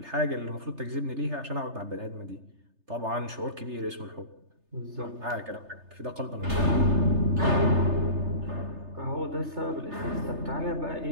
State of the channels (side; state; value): left; late; 3.3 ms